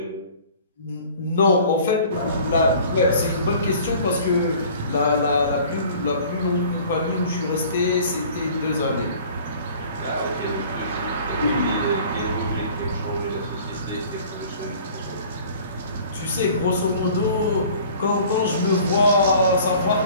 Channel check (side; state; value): both; inverted; correlation -0.48